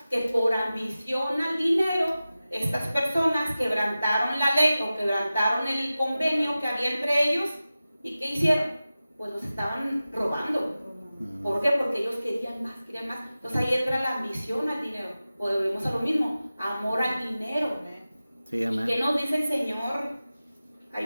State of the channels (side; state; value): both; inverted; correlation -0.95